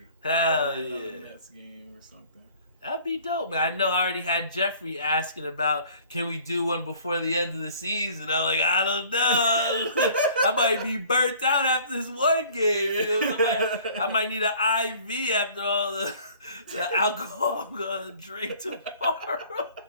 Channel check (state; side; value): inverted; both; correlation -0.52